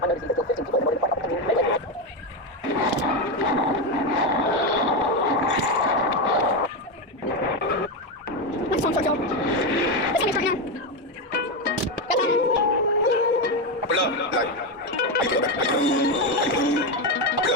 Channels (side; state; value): both; normal; correlation 0.10